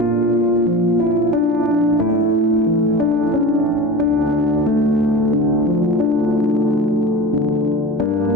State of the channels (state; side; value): normal; both; correlation 0.32